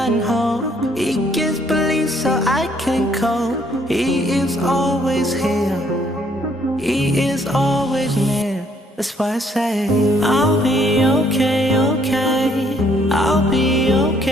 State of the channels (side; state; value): both; normal; correlation 0.66